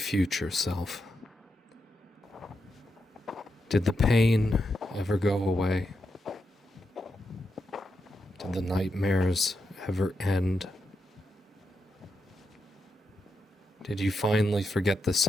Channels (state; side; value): normal; both; correlation 0.85